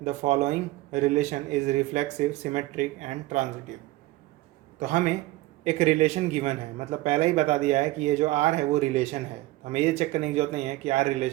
the following relation is reflexive, symmetric and transitive. तो हमें एक relation given है, मतलब पहले ही बता दिया है कि ये जो R है वो रिलेशन है। हमें ये चेक करने की जरूरत नहीं है कि R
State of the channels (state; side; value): quieter; left; 18.4 dB